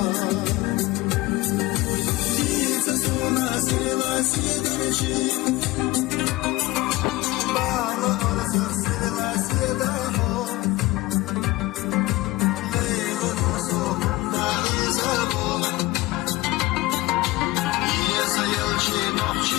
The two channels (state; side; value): quieter; right; 19.5 dB